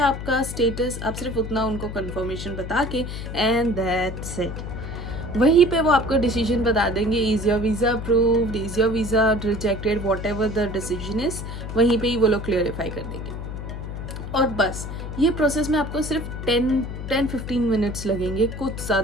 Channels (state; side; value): noise; left; hum, 7 dB below the sound